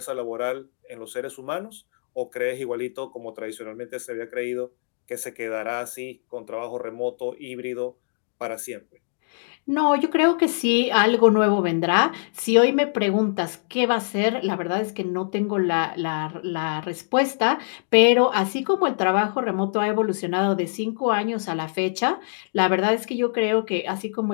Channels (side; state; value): right; silent; digital silence